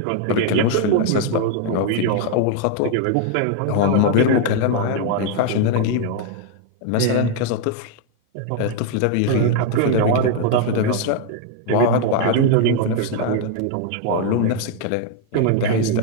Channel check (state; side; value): different; both; correlation 0.00